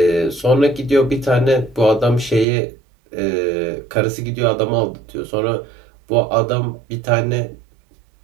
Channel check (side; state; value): left; drops out; at 2.5 s